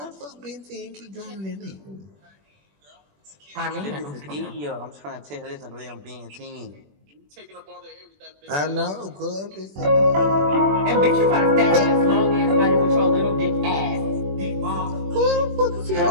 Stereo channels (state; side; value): late; left; 21 ms